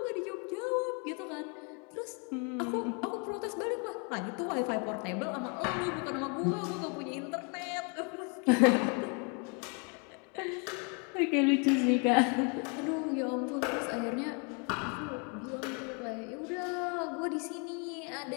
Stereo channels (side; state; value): right; quieter; 35.7 dB